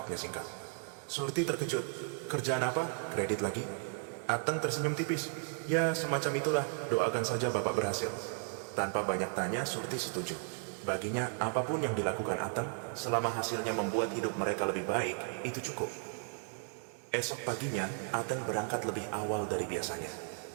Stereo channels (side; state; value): left; silent; 54 dB below the other